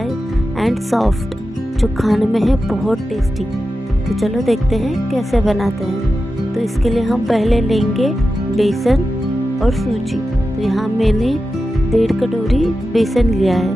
एंड सॉफ्ट, जो खाने में है बहुत टेस्टी। तो चलो देखते हैं कैसे बनाते हैं। तो इसके लिए हम पहले लेंगे बेसन और सूजी। तो यहाँ मैंने 1.5 कटोरी बेसन लिया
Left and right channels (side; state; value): both; normal; correlation 0.92